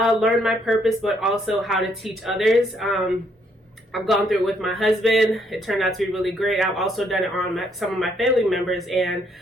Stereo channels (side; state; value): both; normal; correlation 0.70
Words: my purpose, but also how to teach others. I've gone through it with my husband. It turned out to be really great. I've also done it on some of my family members, and